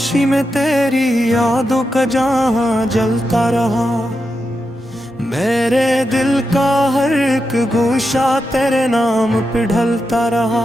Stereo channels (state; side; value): normal; both; correlation 0.87